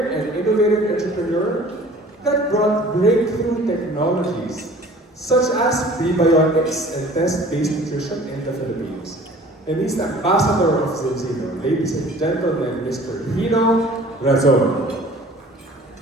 and innovative entrepreneur that brought breakthrough technologies such as prebiotics and test-based nutrition in the Philippines. And he's the ambassador of Zenzino. Ladies and gentlemen, Mr. Hino Razon.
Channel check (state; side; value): normal; both; correlation 0.48